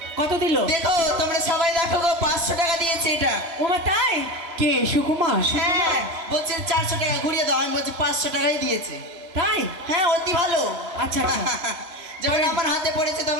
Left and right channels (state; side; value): late; left; 2.9 ms